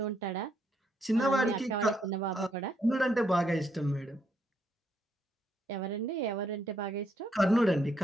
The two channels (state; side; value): normal; both; correlation 0.74